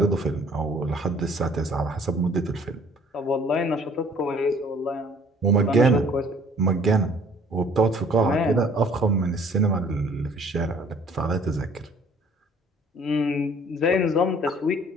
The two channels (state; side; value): normal; both; correlation 0.55